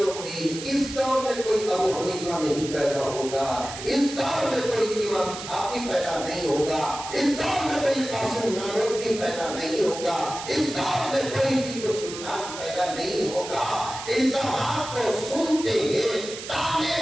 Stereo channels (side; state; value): right; noise; hiss, 10 dB below the sound